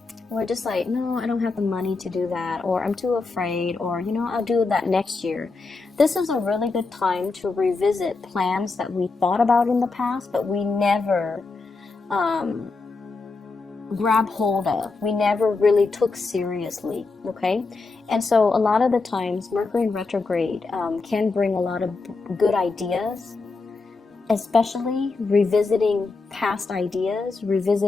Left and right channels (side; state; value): right; quieter; 4.0 dB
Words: we're just like, no, I don't have the money to do that, or I'm too afraid, or, I'll do that next year. This is a really good time to revisit plans that we thought about in the past, but we never grab hold of. We never really took seriously, okay? And so a lot of the times, Mercury in retrograde can bring a lot of good ideas, especially revisiting past ideas,